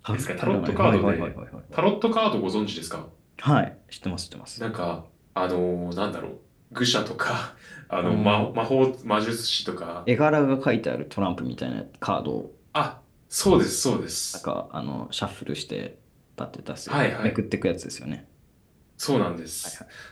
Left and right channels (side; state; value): both; identical; correlation 1.00